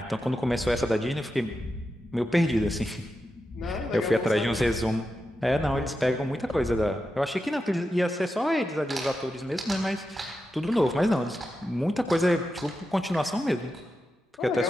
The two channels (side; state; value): both; normal; correlation 0.89